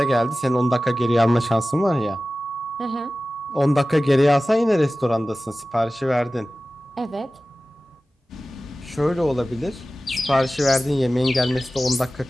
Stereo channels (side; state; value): both; normal; correlation 0.96